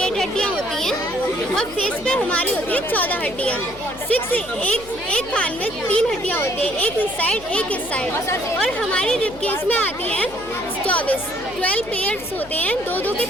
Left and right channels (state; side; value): noise; left; hum, 19 dB below the sound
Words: हड्डियाँ होती हैं और फेस पे हमारी होती है 14 हड्डियाँ। एक कान में 3 हड्डियाँ होती हैं, एक इस साइड एक इस साइड। और हमारी रिब केज में आती हैं 12 पेयर्स होते हैं, 2-2 के